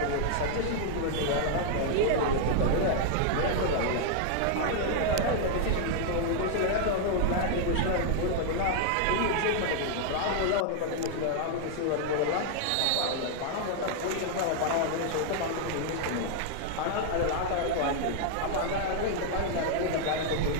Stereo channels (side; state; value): both; different; correlation 0.00